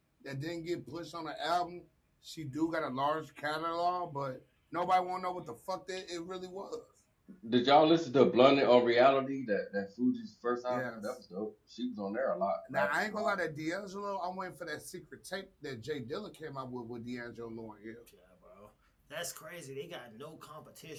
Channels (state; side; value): identical; both; correlation 1.00